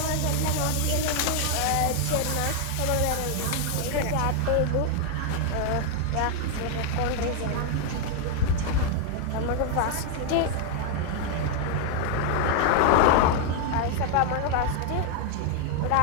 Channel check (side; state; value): both; different; correlation 0.00